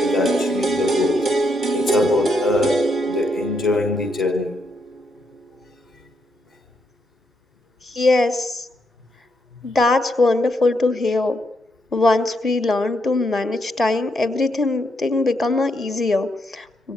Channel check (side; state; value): both; normal; correlation 0.78